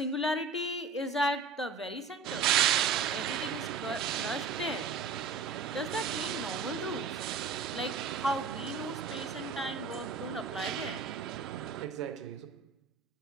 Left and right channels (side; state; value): left; quieter; 4.9 dB